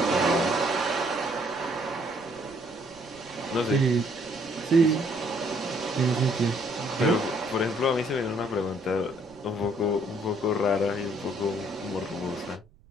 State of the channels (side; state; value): right; noise; rumble, 28 dB below the sound